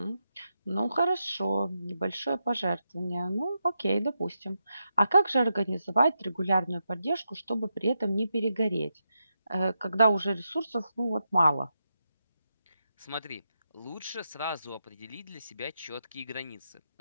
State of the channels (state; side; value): inverted; both; correlation -0.86